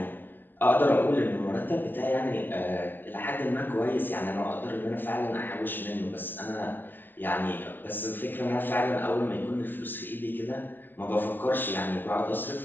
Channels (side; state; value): right; late; 0.091 ms